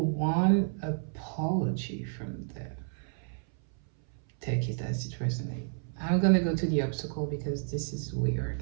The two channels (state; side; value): silent; left; 57 dB below the other